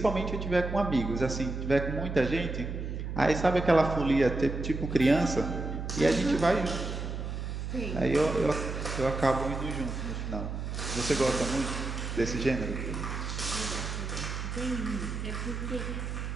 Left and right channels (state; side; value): noise; right; hum, 5 dB below the sound